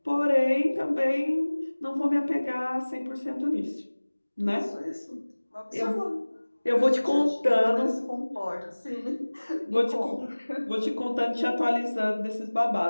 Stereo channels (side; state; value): both; inverted; correlation -1.00